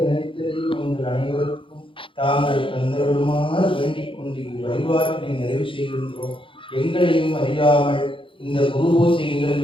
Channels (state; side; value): late; right; 0.25 ms